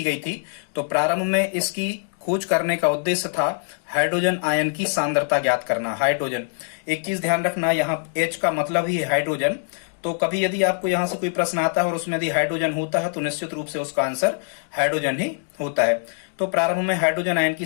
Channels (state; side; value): silent; right; 63 dB below the other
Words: गई थी? तो प्रारंभ में इसकी खोज करने का उद्देश्य था हाइड्रोजन आयन की सांद्रता ज्ञात करना। हाइड्रोजन, एक चीज ध्यान रखना, यहाँ H का मतलब ही है हाइड्रोजन। तो कभी यदि आपको यहाँ से कोई प्रश्न आता है और उसमें यदि हाइड्रोजन होता है तो निश्चित रूप से उसका आंसर हाइड्रोजन ही होता है। तो प्रारंभ में हाइड्रोजन आयन की